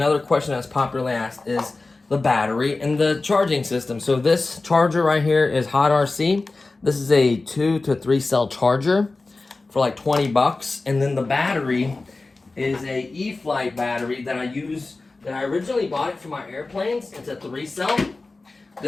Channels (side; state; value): right; quieter; 3.5 dB